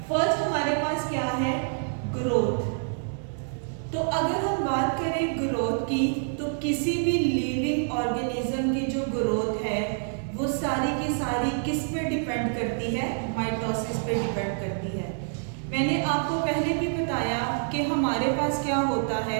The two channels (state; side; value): silent; left; 60 dB below the other